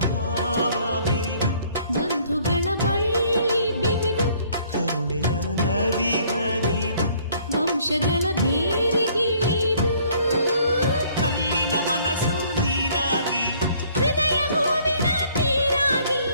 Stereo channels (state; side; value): inverted; both; correlation -0.60